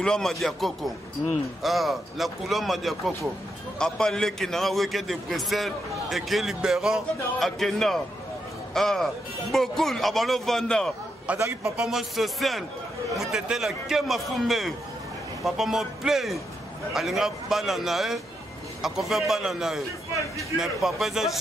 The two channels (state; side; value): normal; both; correlation 0.82